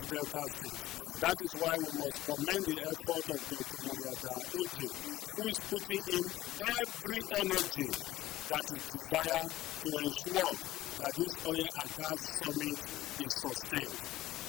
Delta State. That is why we must commend the effort of Dr. MUDIAGHA ODJE, who is putting in every energy that is desired to ensure that this oil and gas summit is sustained.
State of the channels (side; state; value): right; quieter; 15.6 dB